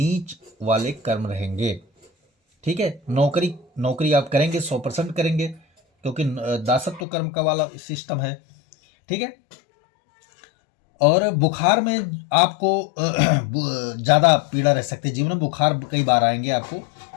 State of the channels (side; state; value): right; drops out; at 7.1 s